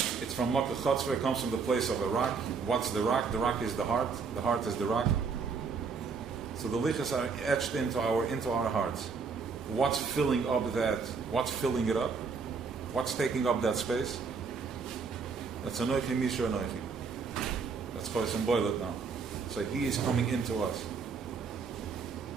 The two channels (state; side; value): quieter; left; 5.3 dB